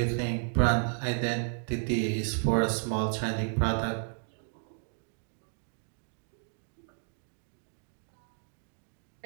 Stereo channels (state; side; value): silent; left; 56 dB below the other